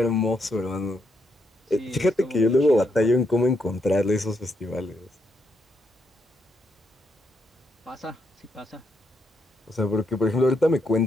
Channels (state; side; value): normal; both; correlation 0.78